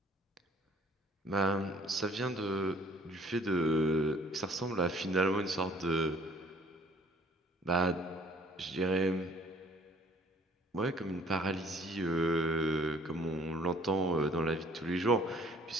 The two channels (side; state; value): both; normal; correlation 0.57